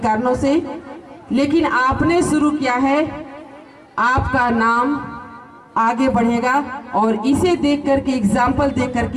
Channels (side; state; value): both; identical; correlation 1.00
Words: से, लेकिन आपने शुरू किया है। आपका नाम आगे बढ़ेगा और इसे देख करके, एग्जाम्पल देख